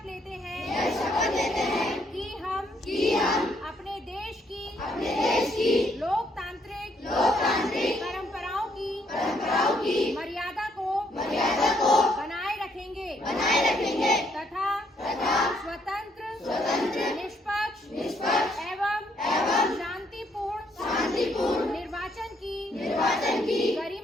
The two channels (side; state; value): both; normal; correlation 0.71